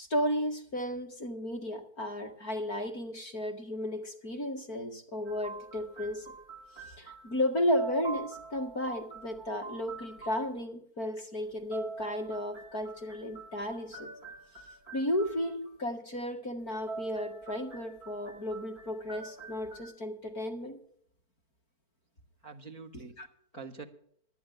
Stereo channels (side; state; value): right; late; 4.4 ms